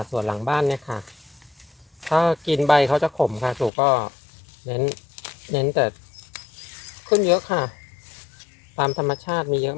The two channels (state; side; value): drops out; right; at 3.7 s